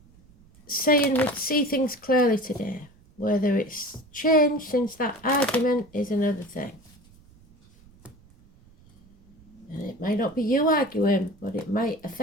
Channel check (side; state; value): right; noise; rumble, 27 dB below the sound